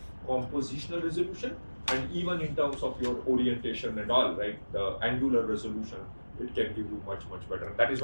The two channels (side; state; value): both; inverted; correlation -1.00